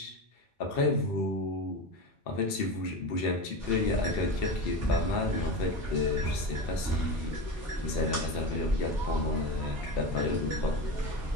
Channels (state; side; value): normal; both; correlation 0.24